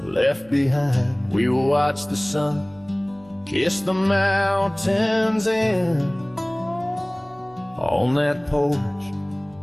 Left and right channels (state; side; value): noise; right; hum, 28 dB below the sound